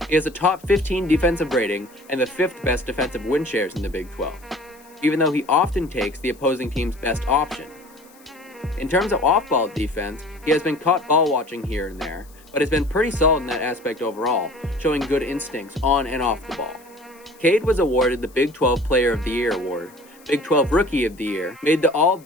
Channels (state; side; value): noise; left; hiss, 27 dB below the sound